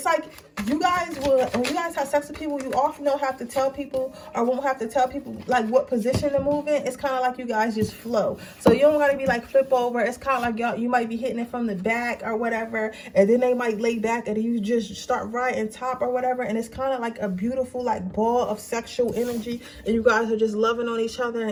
you guys when you guys have sex with people, you often don't have to tell people, or won't have to tell people like what position to move in. It's kind of like you guys just flow. So you don't gotta be like flip over. It's kind of like you might be hitting it from the back or whatever, and then they might lay back, and you just start right and top or whatever, and it's kind of like a beautiful like ball of sexual energy, and you guys are just loving on each other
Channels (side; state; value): both; identical; correlation 1.00